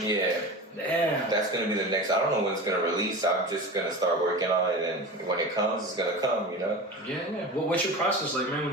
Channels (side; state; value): both; normal; correlation 0.30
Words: Damn. That's going to be the next, I don't know when it's going to release. I'm just going to start working on it, and when it comes, it's going to come, you know? Yeah. What's your process like, man,